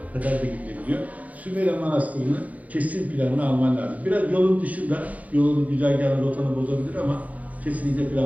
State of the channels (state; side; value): late; left; 0.071 ms